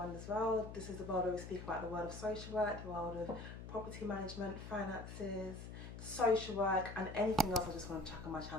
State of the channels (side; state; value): left; noise; hum, 10 dB below the sound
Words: World. This is the world where we speak about the world of social work, the world of property management, finances, social work, and anything else I just want to chuck on my